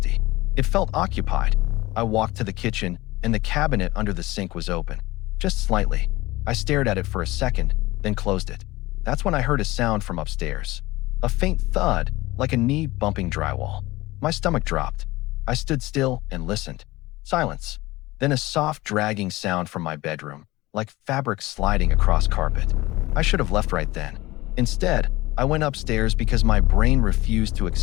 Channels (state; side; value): quieter; right; 19.5 dB